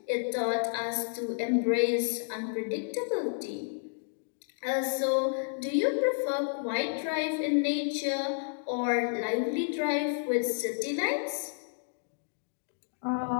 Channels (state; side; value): silent; right; digital silence